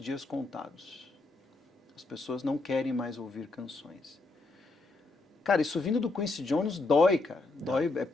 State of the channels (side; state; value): right; quieter; 3.3 dB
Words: contados. As pessoas não querem mais ouvir canções. Cara, isso vindo do Quincy Jones dói, cara. Dói, é